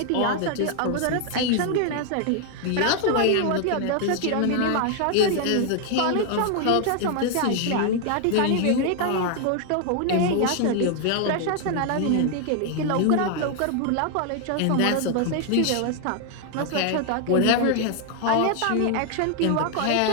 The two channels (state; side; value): different; both; correlation 0.00